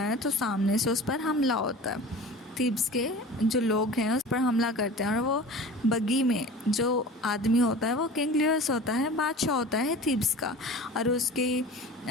तो सामने से उस पर हमला होता है। थीब्स के जो लोग हैं उस पर हमला करते हैं और वो बगी में जो आदमी होता है वो किंग लियस होता है, बादशाह होता है थीब्स का, और उसके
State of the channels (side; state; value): both; normal; correlation 0.38